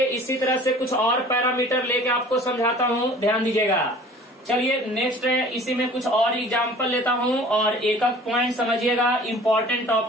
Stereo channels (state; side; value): normal; both; correlation 0.47